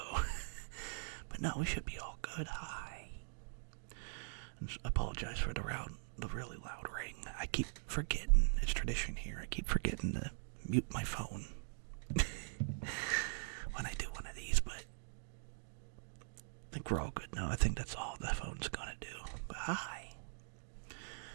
But no, we should be all good. Hi. And apologize for the really loud ring. I keep forgetting. It's tradition here. I keep forgetting to mute my phone when I do one of these, but I think we're all good now. I think that's all the phone's gonna do. But hi.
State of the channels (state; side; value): silent; left; digital silence